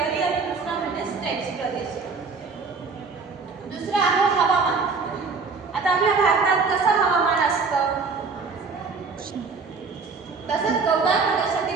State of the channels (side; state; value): left; quieter; 4.7 dB